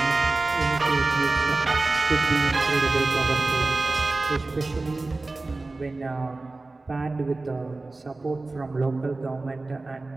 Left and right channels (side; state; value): left; quieter; 3.3 dB